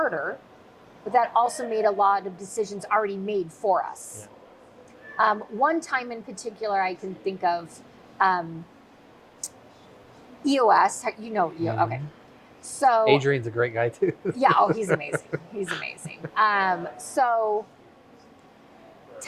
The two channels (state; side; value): identical; both; correlation 1.00